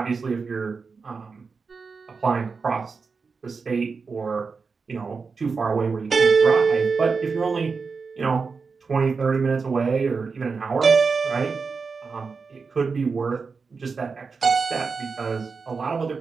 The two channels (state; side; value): quieter; left; 4.9 dB